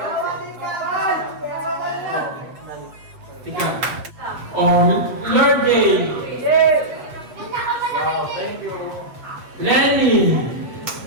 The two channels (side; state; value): left; late; 7.6 ms